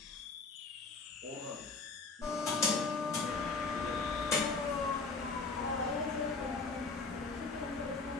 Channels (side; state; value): right; quieter; 4.2 dB